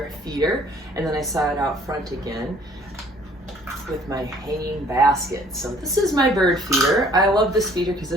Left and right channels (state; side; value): normal; both; correlation 0.57